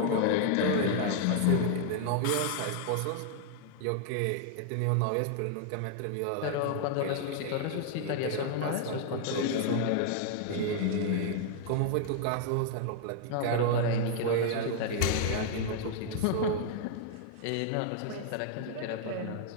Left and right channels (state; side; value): different; both; correlation 0.00